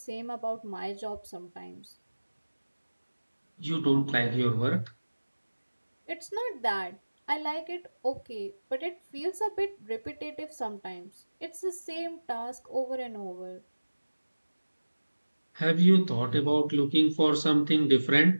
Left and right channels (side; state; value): both; inverted; correlation -1.00